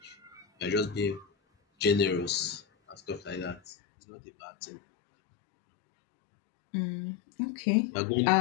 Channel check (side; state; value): right; drops out; at 3.6 s